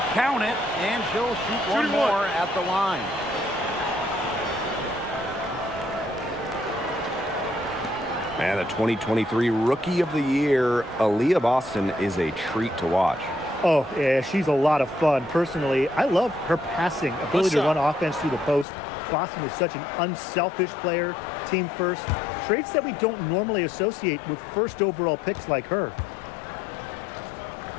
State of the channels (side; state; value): right; drops out; at 18.7 s